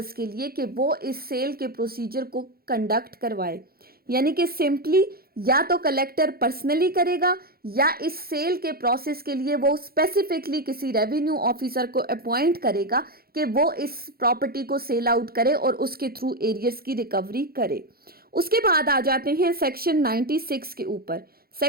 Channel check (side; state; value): left; late; 0.44 ms